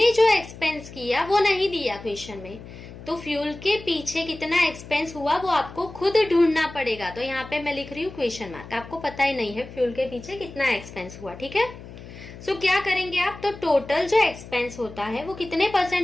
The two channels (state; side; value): noise; left; hum, 15 dB below the sound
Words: जो एक्सपेंस किया वो नहीं दिया क्वेश्चन में, तो फ्यूल के पीछे कितना एक्सपेंस हुआ वो आपको खुद ढूंढना पड़ेगा। तो यहाँ पे मैं लिख रही हूँ क्वेश्चन मार्क। आपको पता ही नहीं है फ्यूल के पीछे कितना एक्सपेंस हुआ, ठीक है। सो क्या करेंगे आप? तो टोटल जो एक्सपेंस होता है वो कितने